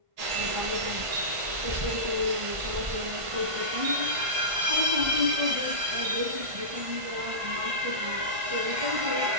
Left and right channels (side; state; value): left; late; 1.5 ms